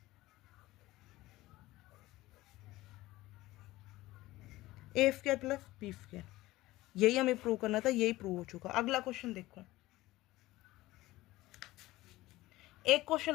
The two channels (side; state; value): right; quieter; 17.9 dB